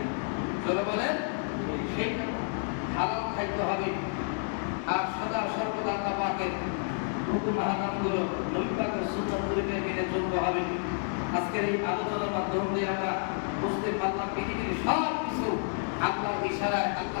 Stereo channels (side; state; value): right; silent; 58 dB below the other